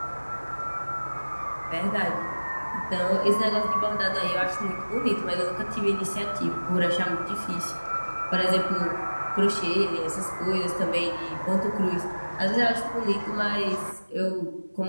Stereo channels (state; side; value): inverted; both; correlation -1.00